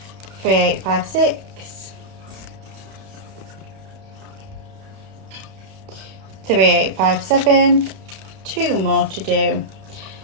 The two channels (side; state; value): left; late; 31 ms